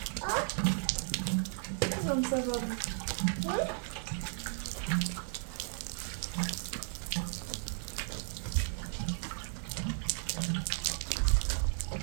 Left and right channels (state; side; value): silent; left; 55 dB below the other